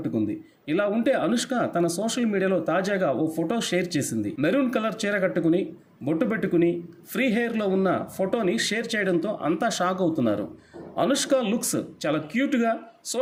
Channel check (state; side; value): identical; both; correlation 1.00